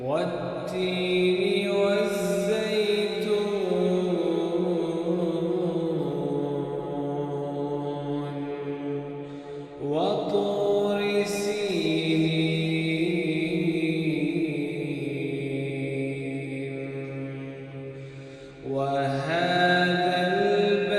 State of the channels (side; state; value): both; identical; correlation 1.00